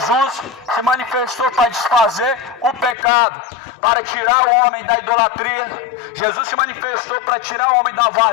se manifestou para desfazer o pecado, para tirar o homem da idolatria. Jesus se manifestou para tirar o homem da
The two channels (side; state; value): right; drops out; at 3.0 s